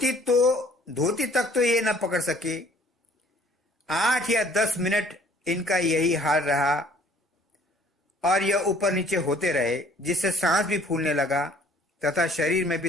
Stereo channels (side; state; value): both; normal; correlation 0.57